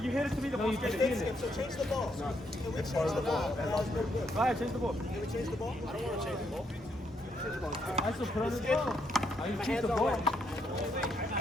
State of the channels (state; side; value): normal; both; correlation 0.76